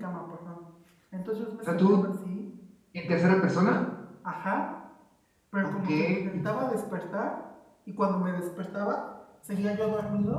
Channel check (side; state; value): both; identical; correlation 1.00